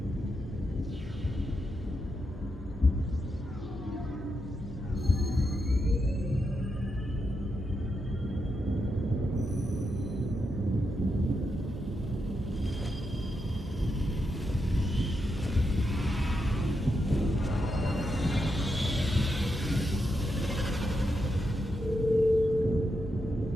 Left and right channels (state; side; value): normal; both; correlation 0.84